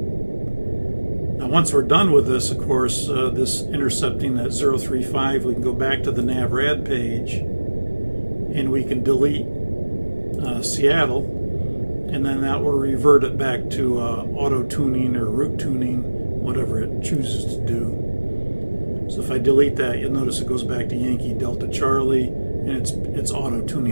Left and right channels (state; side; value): inverted; both; correlation -1.00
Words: Now once we're done with this, of course, this intercepting that 035, we can go back to the NavRad page and we can delete Seattle, and then that will revert it back to auto tuning or route tuning, whatever it chooses to do. So if I delete that, you'll notice it goes back to Yankee Delta Charlie, and it's auto